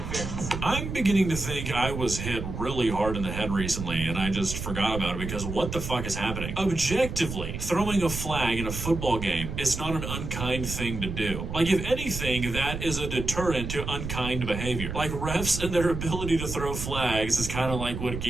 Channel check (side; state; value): right; noise; rumble, 6 dB below the sound